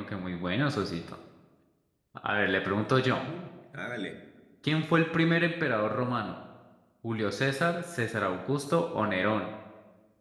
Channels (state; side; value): identical; both; correlation 1.00